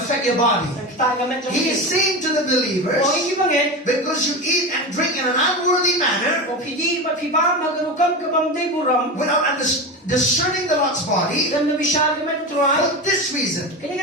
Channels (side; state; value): both; normal; correlation 0.23